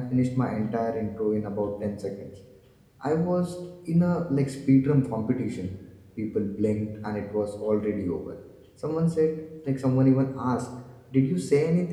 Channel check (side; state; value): both; identical; correlation 1.00